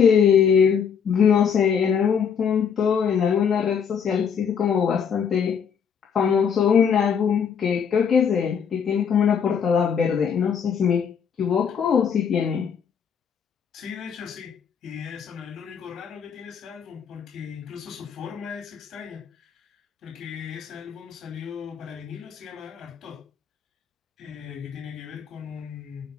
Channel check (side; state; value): right; quieter; 7.1 dB